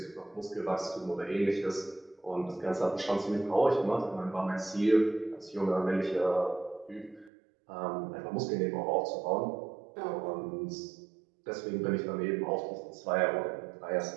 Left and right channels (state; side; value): drops out; left; at 7.3 s